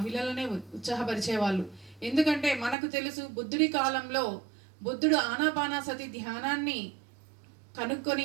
ఉత్సాహపరిచేవాళ్ళు. ఎందుకంటే మనకు తెలుసు బుద్ధుడి కాలంలో బుద్ధుడు ఆనాపానసతి ధ్యానాన్ని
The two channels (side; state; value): left; drops out; at 2.8 s